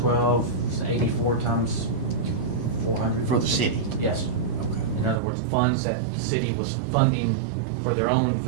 84 times 400. For the city? Yes. Okay. In other words, funds that the city was funding for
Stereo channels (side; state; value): left; drops out; at 5.2 s